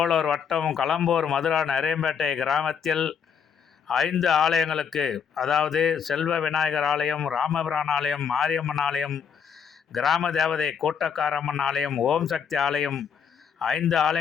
வட்டம் களம்பூர் மதுரா நரேம்பேட்டை கிராமத்தில் 5 ஆலயங்களுக்கு, அதாவது செல்வ விநாயகர் ஆலயம், ராமபிரான் ஆலயம், மாரியம்மன் ஆலயம், கிராம தேவதை கூட்டக்காரம்மன் ஆலயம், ஓம் சக்தி ஆலயம் 5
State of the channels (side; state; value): right; quieter; 7.1 dB